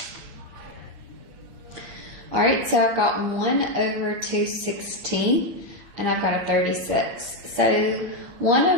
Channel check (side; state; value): left; late; 8.0 ms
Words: All right, so I've got 1 over 216, and I've got a 36. So 1